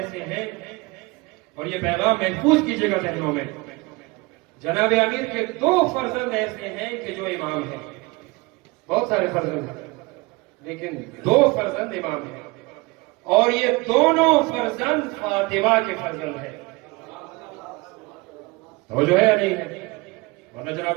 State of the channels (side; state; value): left; quieter; 24.4 dB